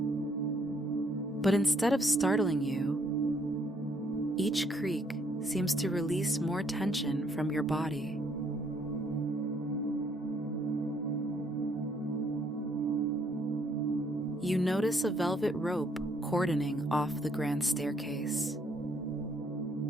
But instead of startling you, each creak seems to release more tension from your body. You notice a velvet rope cordoning off the grand staircase,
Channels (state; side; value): normal; both; correlation 0.68